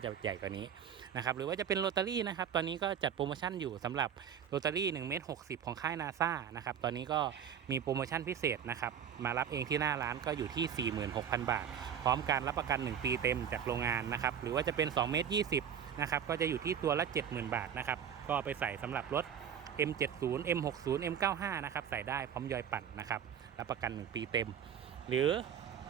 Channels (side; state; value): left; quieter; 8.4 dB